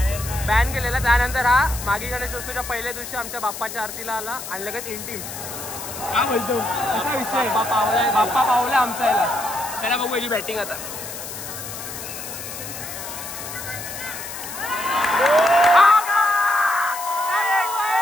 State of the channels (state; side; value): noise; left; hiss, 9 dB below the sound